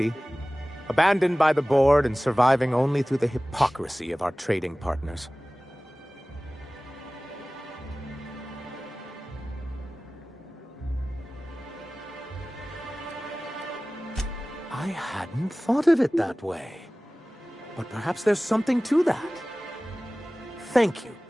abandoned by the board and surviving only through the hypocrisy of our trading partners. I hadn't thought of it that way. But perhaps there's something to that. Thank you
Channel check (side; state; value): both; normal; correlation 0.98